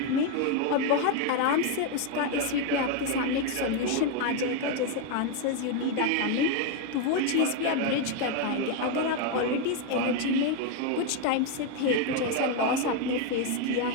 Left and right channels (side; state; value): both; different; correlation 0.01